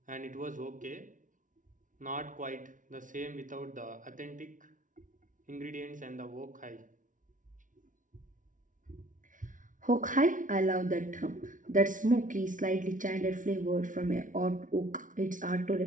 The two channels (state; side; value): late; left; 0.38 ms